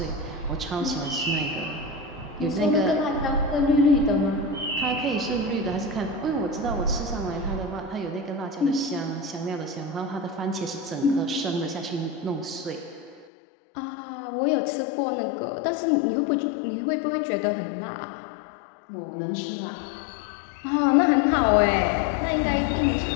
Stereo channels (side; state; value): right; drops out; at 13.2 s